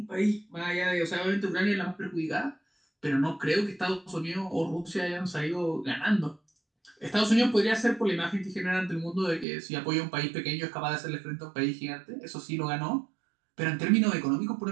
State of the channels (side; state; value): left; drops out; at 9.5 s